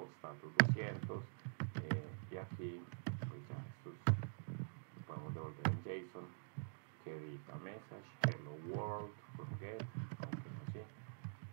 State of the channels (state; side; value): silent; left; digital silence